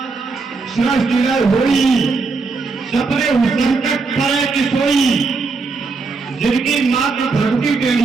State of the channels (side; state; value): left; quieter; 4.2 dB